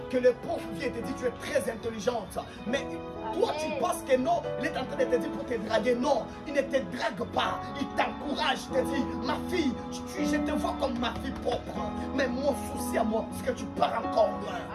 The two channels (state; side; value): identical; both; correlation 1.00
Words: que le prof vient et te dit tu es très intelligente, mais toi tu penses que non, il est en train de te dire pour te draguer. Non, il ne te drague pas, il t'encourage, il te dit ma fille, je te vois comme ma fille propre, mais mon souci à moi, c'est que tu pars encore loin.